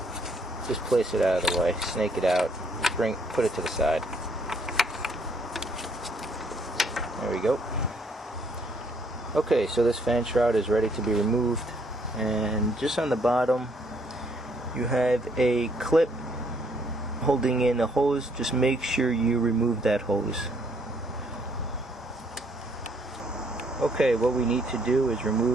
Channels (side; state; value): both; normal; correlation 0.67